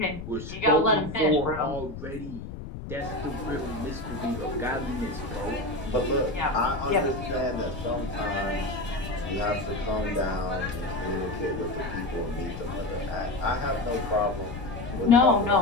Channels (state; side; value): noise; left; rumble, 10 dB below the sound